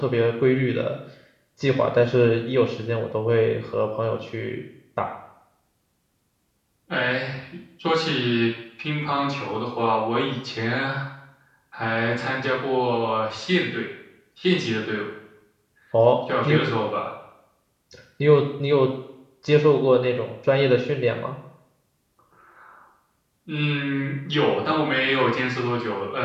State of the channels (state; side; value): identical; both; correlation 1.00